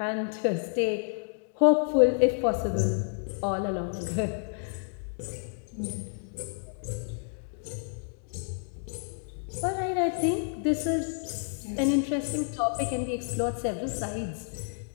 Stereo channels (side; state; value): right; silent; 58 dB below the other